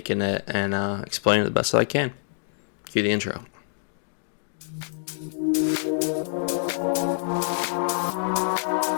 it, and explain it the best that I can. Cue the intro.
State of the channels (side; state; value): right; silent; digital silence